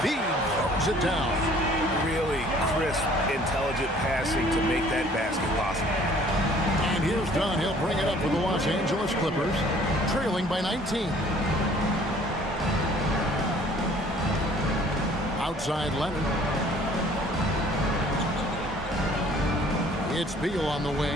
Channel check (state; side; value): normal; both; correlation 0.55